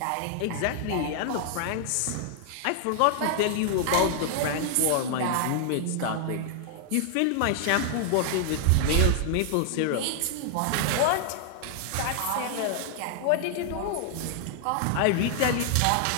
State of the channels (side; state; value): both; different; correlation 0.00